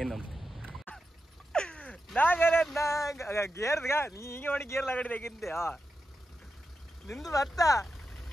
ನಂಬ್ತೀವಿ. ಗೇರ್ಗ ನೀ ಹಿಂಗೆ ಮಾಡಿ ಗೇರ್ ಲಗಡಿದಾಗಿದ್ದೆ ನಿಂದು ಬರ್ತ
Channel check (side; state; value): both; normal; correlation 0.89